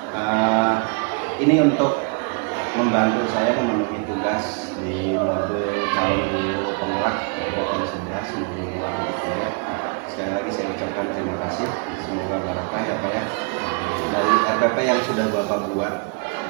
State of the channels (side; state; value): left; quieter; 37.1 dB